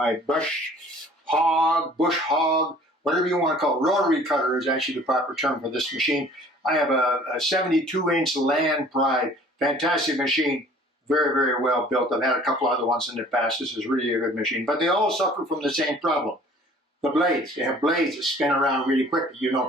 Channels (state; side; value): normal; both; correlation 0.51